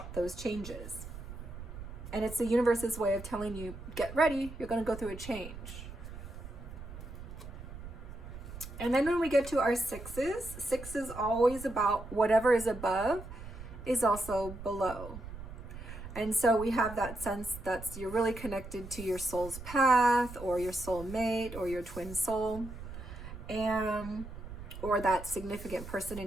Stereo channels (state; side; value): noise; right; rumble, 12 dB below the sound